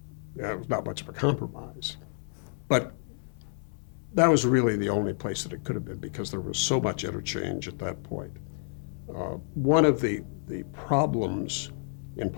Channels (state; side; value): silent; right; 58 dB below the other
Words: It was not much of a compromise, but that was really the only place that it could have been, because there was so much interchange at that point. One of the problems in